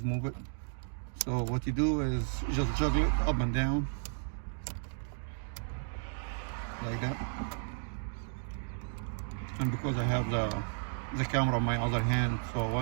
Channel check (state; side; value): silent; left; digital silence